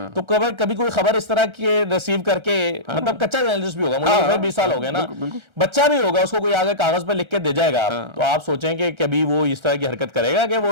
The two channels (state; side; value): late; left; 1.3 ms